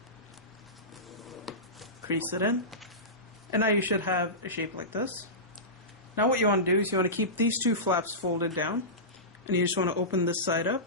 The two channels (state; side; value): normal; both; correlation -0.19